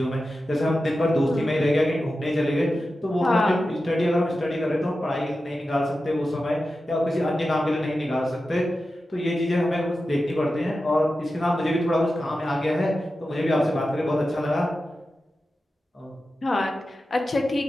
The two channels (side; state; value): both; normal; correlation 0.92